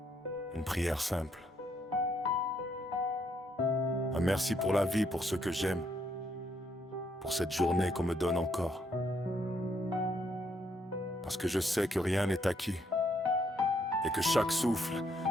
une prière simple. Un merci pour la vie, pour ce que j'aime, pour cette journée qu'on me donne encore. Parce que je sais que rien n'est acquis, et que chaque souffle,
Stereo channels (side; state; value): both; normal; correlation 0.73